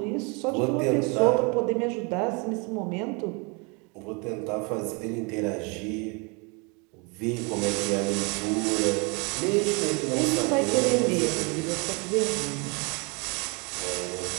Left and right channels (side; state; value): left; quieter; 31.3 dB